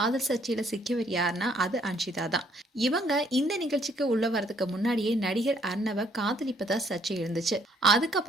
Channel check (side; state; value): both; normal; correlation 0.66